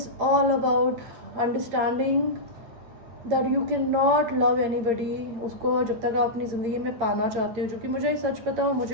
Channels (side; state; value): left; late; 9.0 ms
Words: all about understanding that you can not love anybody उसको जब तक आप अपनी ज़िंदगी में पाना चाहते हो. जो कि मुझे सच पता हो,